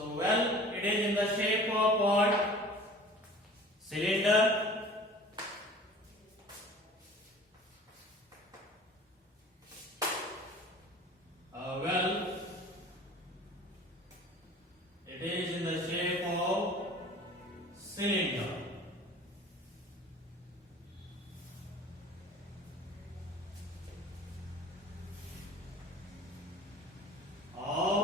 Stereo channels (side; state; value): both; normal; correlation 0.45